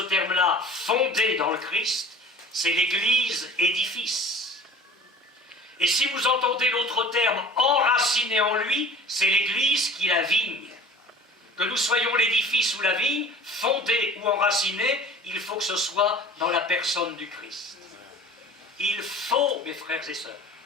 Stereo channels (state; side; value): normal; both; correlation 0.44